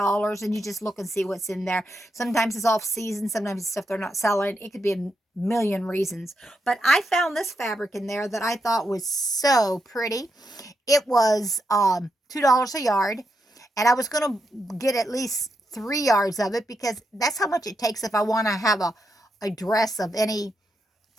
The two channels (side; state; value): both; normal; correlation 0.83